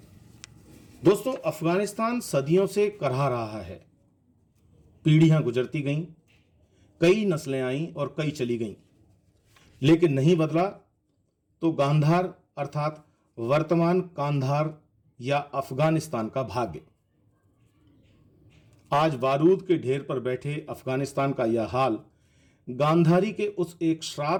दोस्तों, अफगानिस्तान सदियों से करहा रहा है। पीढ़ियां गुजरती गईं, कई नस्लें आईं और कई चली गईं, लेकिन नहीं बदला तो गांधार अर्थात वर्तमान कांधार या अफगानिस्तान का भाग्य। आज बारूद के ढेर पर बैठे अफगानिस्तान का यह हाल गांधारी के उस एक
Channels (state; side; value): identical; both; correlation 1.00